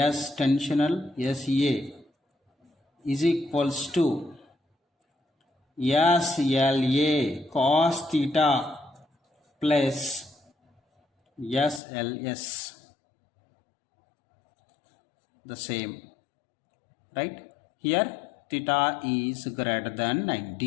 tensional SA is equals to SLA cos theta plus SLS. The same, right? Here theta is greater than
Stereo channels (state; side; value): drops out; right; at 11.8 s